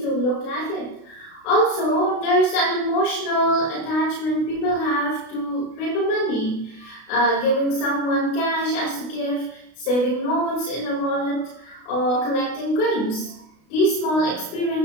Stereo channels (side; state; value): right; late; 32 ms